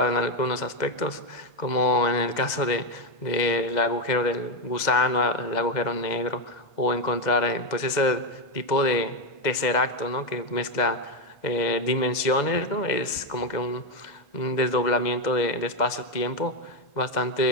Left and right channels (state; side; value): late; right; 2.0 ms